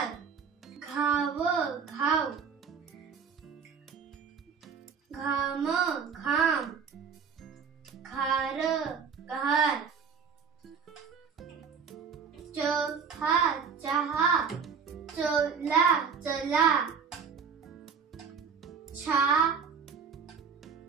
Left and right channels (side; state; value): left; quieter; 6.2 dB